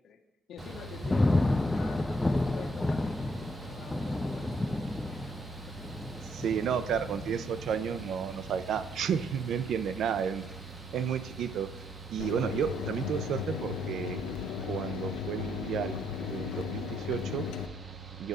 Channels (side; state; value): both; normal; correlation 0.71